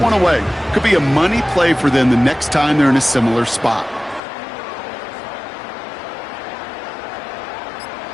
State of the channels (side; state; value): right; drops out; at 4.2 s